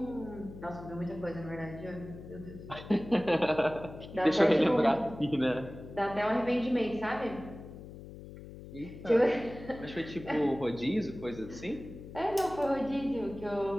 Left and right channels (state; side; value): noise; left; hum, 14 dB below the sound